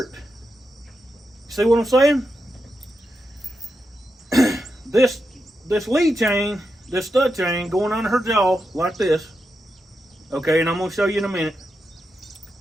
See what I'm saying? This lead chain, this stud chain, going under her jaw like this. Okay, and I'm going to show you in a minute.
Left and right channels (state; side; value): normal; both; correlation 0.87